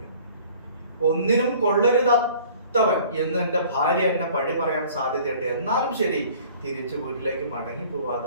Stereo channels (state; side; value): inverted; both; correlation -0.51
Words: ഒന്നിനും കൊള്ളരുതാത്തവൻ എന്ന് എന്റെ ഭാര്യ എന്നെ പഴി പറയാൻ സാധ്യതയുണ്ട്, എന്നാലും ശരി തിരിച്ചു വീട്ടിലേക്ക് മടങ്ങി